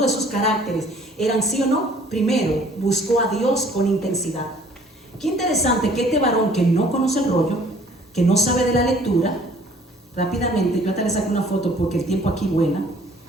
de sus caracteres eran sí o no, primero buscó a Dios con intensidad. Qué interesante que este varón que no conoce el rollo, que no sabe de la lectura, rápidamente, yo hasta le saqué una foto porque el tiempo aquí vuela,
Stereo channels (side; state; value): both; normal; correlation 0.56